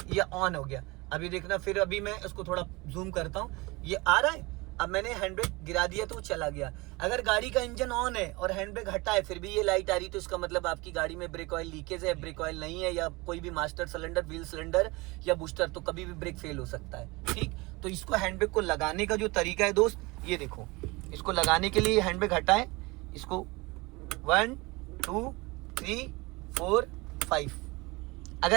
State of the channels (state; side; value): quieter; left; 24.1 dB